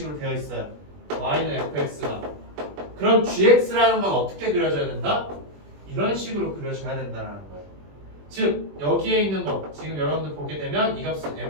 되어 있어요. y는 fx가. 그럼 gx라는 건 어떻게 그려져야 된다? 이런 식으로 그려져야 된다는 거예요. 즉 여기에 있는 거 지금 여러분들 보게 되면 이 값은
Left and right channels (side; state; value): left; late; 21 ms